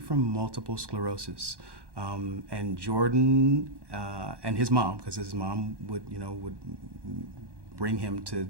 from multiple sclerosis. And Jordan and his mom, because his mom would bring him to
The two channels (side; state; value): left; late; 1.1 ms